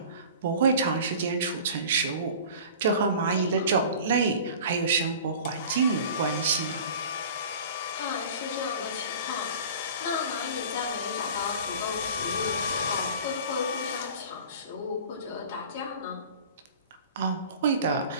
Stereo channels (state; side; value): inverted; both; correlation -0.41